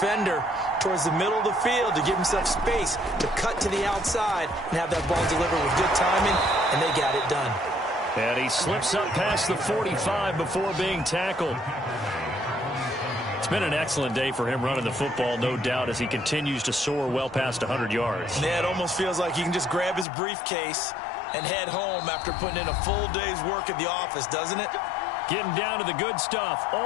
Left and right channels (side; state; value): right; drops out; at 20.1 s